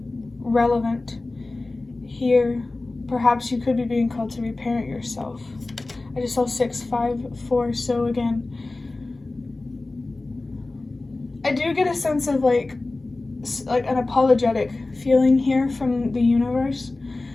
relevant here. Perhaps you could be being called to reparent yourself. I just saw 654, so again, I do get a sense of like an apologetic feeling here from the universe,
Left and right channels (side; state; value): right; quieter; 3.2 dB